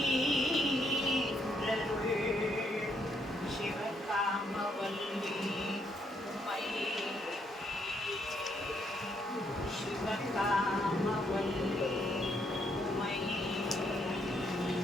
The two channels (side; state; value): both; normal; correlation 0.74